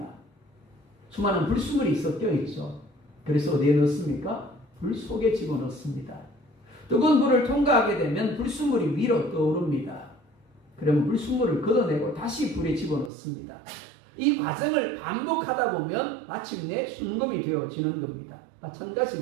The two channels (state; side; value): drops out; left; at 13.1 s